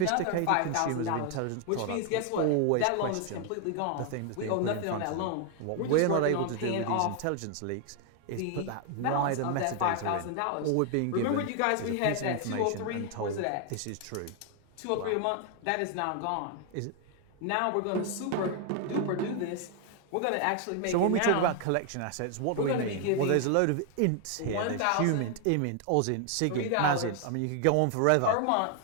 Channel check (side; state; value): both; different; correlation 0.00